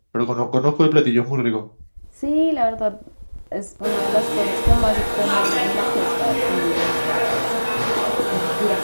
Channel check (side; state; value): both; inverted; correlation -1.00